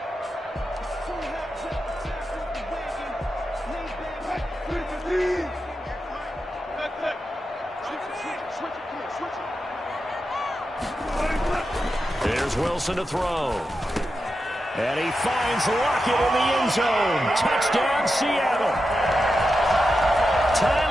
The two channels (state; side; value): normal; both; correlation 0.89